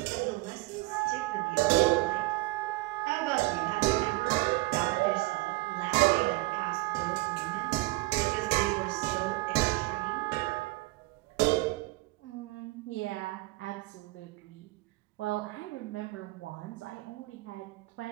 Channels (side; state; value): left; quieter; 22.1 dB